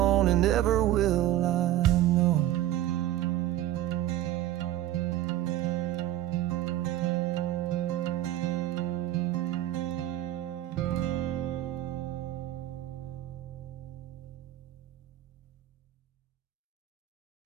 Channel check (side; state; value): left; quieter; 13.4 dB